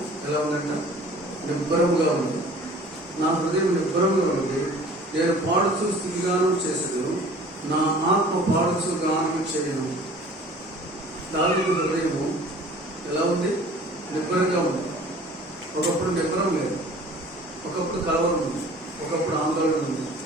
ఎలా ఉందంట? నిబ్బరముగా ఉంది. నా హృదయం నిబ్బరముగా ఉంది, నేను పాడుచు స్తుతిగానం చేసేదను, నా ఆత్మ పాడుచు గానం చేయను. దావీదు హృదయము ఎలా ఉంది? నిబ్బరంగా ఉంది. ఒకప్పుడు నిబ్బరం లేదు, ఒకప్పుడు కలవరం ఉంది, ఒకప్పుడు ఆందోళన ఉంది.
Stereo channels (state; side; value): normal; both; correlation 0.47